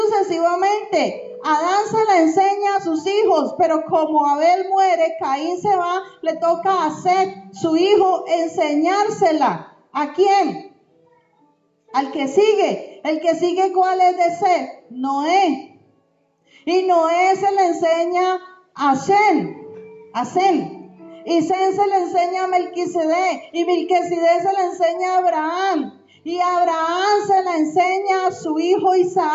Adán se la enseña a sus hijos, pero como Abel muere, Caín se va, le toca a Set, su hijo, enseñársela. ¿A quién? Al que sigue. El que sigue, ¿cuál es de Set? Noé. Y Noé se le enseña a Sem. Y Sem se le enseña a Melquisedec. Y Melquisedec se le enseña a Abraham. Y Abraham se la enseña a su hijo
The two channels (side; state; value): both; identical; correlation 1.00